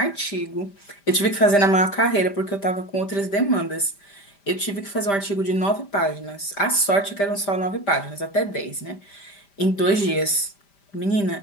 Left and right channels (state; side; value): late; right; 5.0 ms